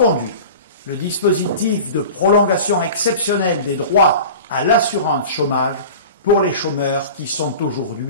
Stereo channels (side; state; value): both; inverted; correlation -0.36